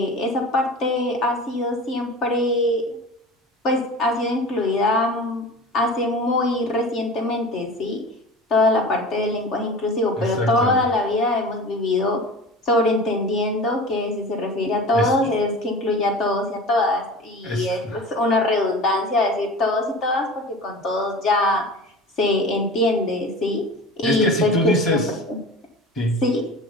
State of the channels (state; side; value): normal; both; correlation 0.36